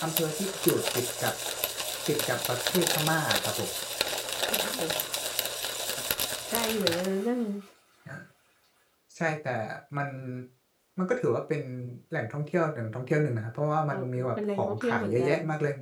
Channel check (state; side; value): identical; both; correlation 1.00